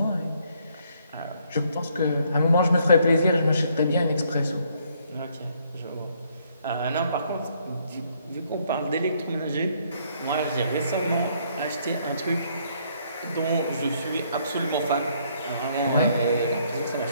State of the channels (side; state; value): both; inverted; correlation -0.68